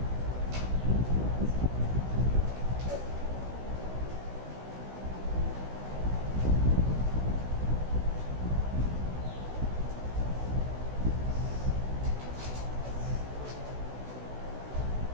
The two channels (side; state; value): left; late; 16 ms